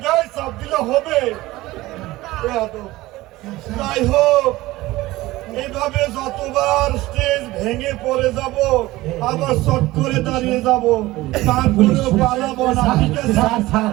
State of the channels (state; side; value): quieter; left; 18.3 dB